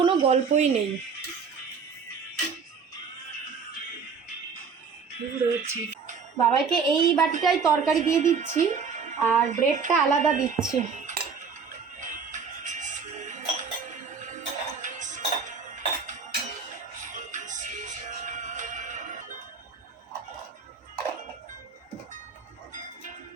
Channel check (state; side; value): quieter; left; 5.7 dB